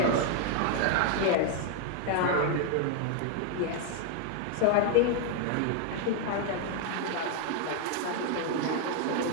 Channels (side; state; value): both; different; correlation 0.00